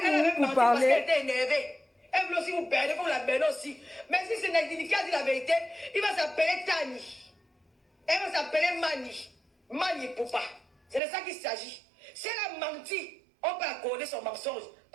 avait où pour menti parce qu'elle parler? était énervée. Elle voulait aussi vous perdre, vous la perdre aussi. Mais si c'est Niki qui a dit la vérité, il va s'appeler Tani. Elle va s'appeler Mani. Mani Poupa. C'est de ça qu'il s'agit. Si elle a menti, on peut accorder son mensonge.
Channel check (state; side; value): drops out; left; at 11.0 s